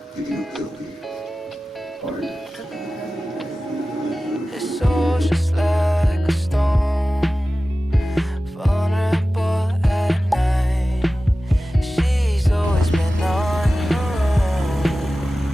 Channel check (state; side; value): normal; both; correlation 0.95